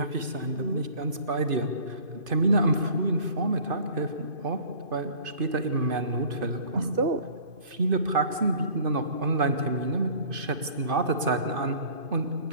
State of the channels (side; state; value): left; late; 2.5 ms